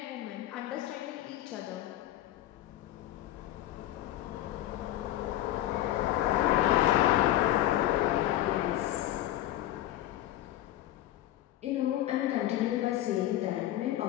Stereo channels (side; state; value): right; quieter; 14.0 dB